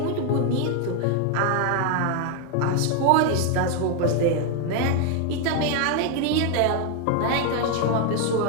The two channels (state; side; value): different; both; correlation 0.01